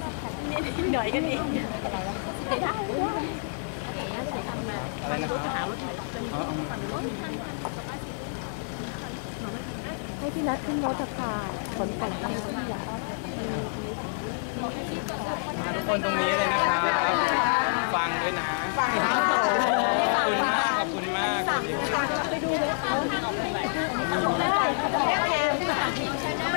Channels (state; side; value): silent; right; digital silence